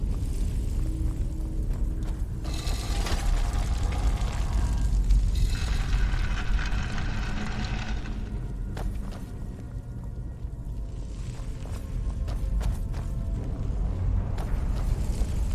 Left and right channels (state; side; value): identical; both; correlation 1.00